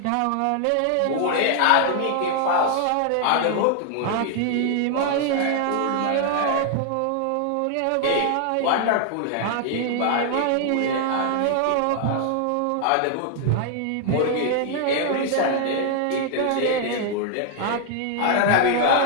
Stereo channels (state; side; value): different; both; correlation 0.00